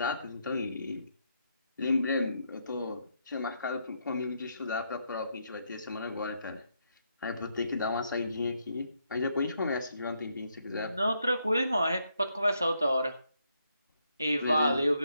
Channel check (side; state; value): both; inverted; correlation -0.77